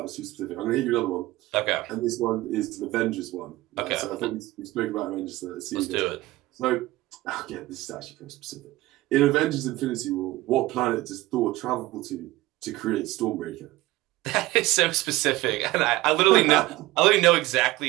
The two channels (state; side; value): quieter; left; 18.4 dB